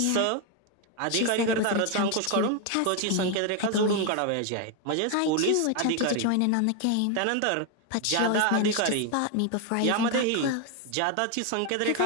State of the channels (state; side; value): different; both; correlation 0.01